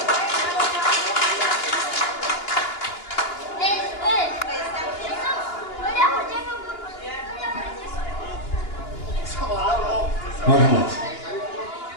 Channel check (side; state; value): right; late; 2.9 ms